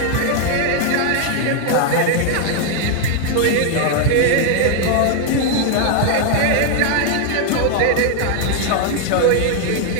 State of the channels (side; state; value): both; different; correlation 0.00